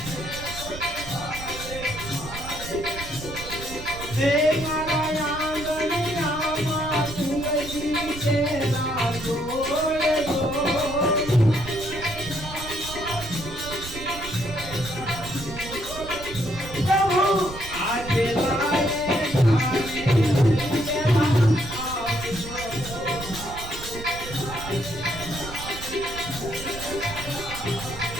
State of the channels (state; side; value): noise; right; rumble, 12 dB below the sound